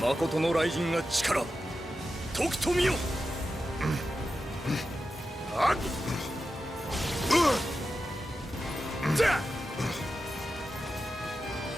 Makoto no Raijin ga chikara toku to miyo.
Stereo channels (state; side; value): normal; both; correlation 0.91